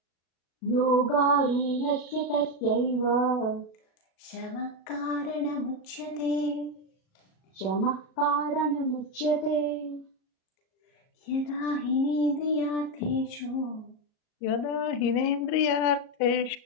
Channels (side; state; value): right; late; 37 ms